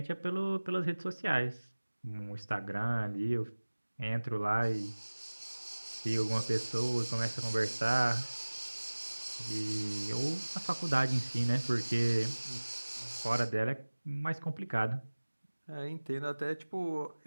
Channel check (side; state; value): both; inverted; correlation -1.00